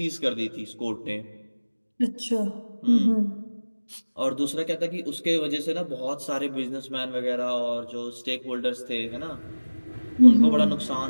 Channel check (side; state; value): both; inverted; correlation -1.00